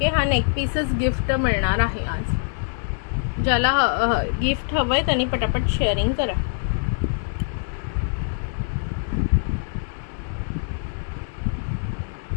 हा नेकपीसच गिफ्ट मिळणार आहे आज. ज्याला गिफ्ट हवंय त्यांनी पटापट शेअरिंग करा.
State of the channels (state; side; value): silent; right; 63 dB below the other